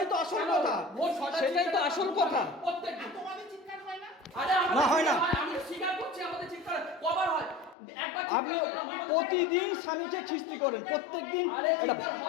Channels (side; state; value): right; drops out; at 7.8 s